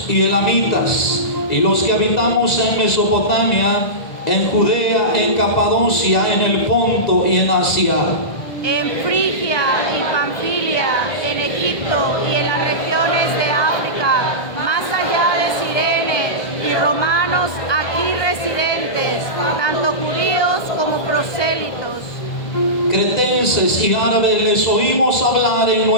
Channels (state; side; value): late; right; 1.2 ms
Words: y elamitas, y los que habitamos en Mesopotamia, en Judea, en Capadocia, en el Ponto y en Asia, en Frigia y Panfilia, en Egipto y en las regiones de África, más allá de Cirene, y romanos aquí residentes, tanto judíos como prosélitos. cretenses y árabes, les oímos hablar en